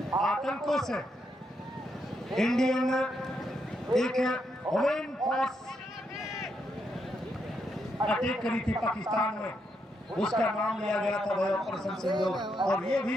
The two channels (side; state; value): both; normal; correlation 0.80